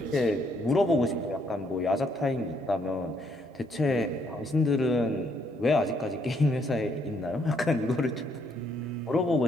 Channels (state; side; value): normal; both; correlation 0.71